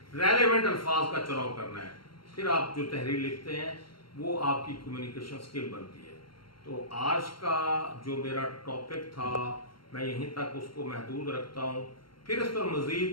रेलेवेंट अल्फाज का चुनाव करना है, फिर आप जो तहरीर लिखते हैं वो आपकी कम्युनिकेशन स्किल बनती है। तो आज का जो मेरा टॉपिक था मैं यहीं तक उसको महदूद रखता हूँ, फिर इस पर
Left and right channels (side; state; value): right; late; 0.73 ms